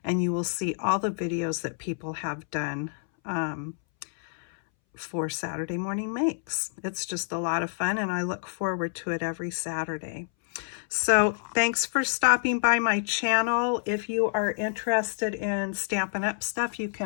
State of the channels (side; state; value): right; silent; 59 dB below the other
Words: and you will see all the videos that people have done for Saturday Morning Makes. It's just a lot of fun, and I look forward to it every Saturday. So thanks for stopping by my channel. If you are interested in Stampin' Up stuff, you